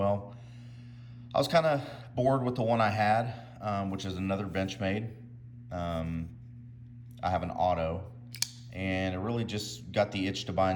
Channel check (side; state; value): both; identical; correlation 1.00